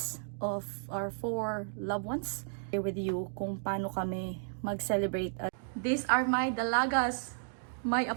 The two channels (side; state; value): left; silent; digital silence